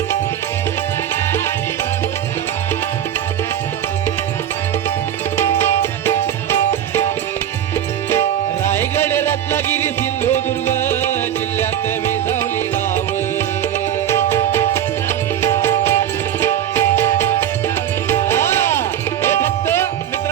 रायगड रत्नागिरी सिंधुदुर्ग जिल्ह्यात विसावली गाव. हे फक्त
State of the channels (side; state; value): left; quieter; 10.6 dB